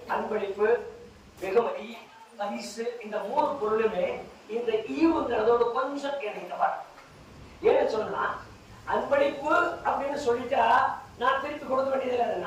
அன்பளிப்பு, வெகுமதி, பரிசு, இந்த 3 பொருளுமே இந்த ஈவுங்கிறதோட கொஞ்சம் இணைந்தவர். ஏன்னு சொன்னா, அன்பளிப்பு அப்படின்னு சொல்லிட்டா நான் திருப்பி கொடுக்க வேண்டியதில்லை.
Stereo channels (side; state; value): both; identical; correlation 1.00